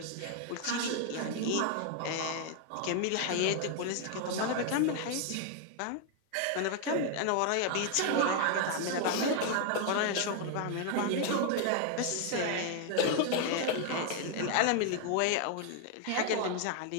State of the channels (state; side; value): different; both; correlation 0.00